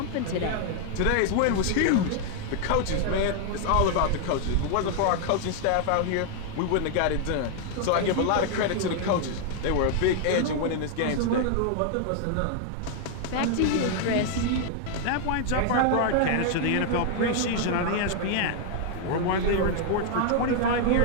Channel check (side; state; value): both; different; correlation 0.00